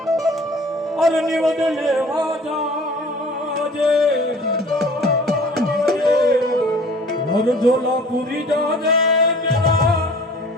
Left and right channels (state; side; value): normal; both; correlation 0.48